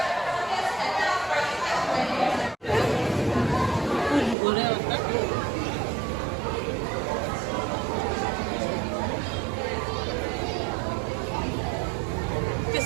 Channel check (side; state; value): left; drops out; at 4.4 s